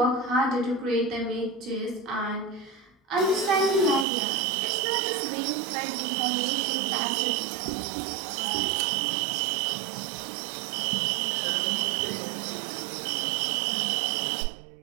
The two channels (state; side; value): drops out; left; at 4.0 s